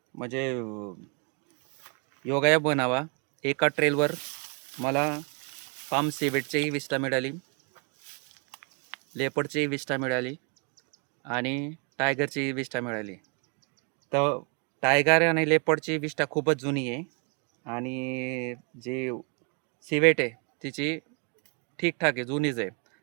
म्हणजे योगायोग बनावा एका ट्रेलवर मला पाम सिवेटचीही विष्ठा मिळाली, लेपर्डचीही विष्ठा मिळाली आणि टायगरची विष्ठा मिळाली. तर टायगर आणि लेपर्डची विष्ठा खूपच जुनी आहे आणि जी सिवेट आहे तिची ठीकठाक आहे, जुनीच आहे.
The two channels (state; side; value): quieter; left; 35.7 dB